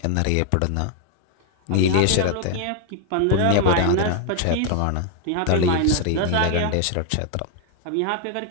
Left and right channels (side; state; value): both; different; correlation 0.00